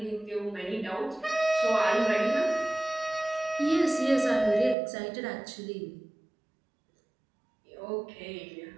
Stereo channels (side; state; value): left; drops out; at 4.8 s